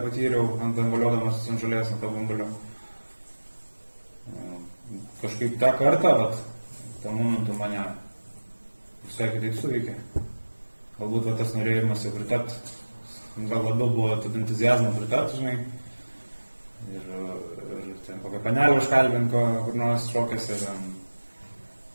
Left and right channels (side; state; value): both; inverted; correlation -1.00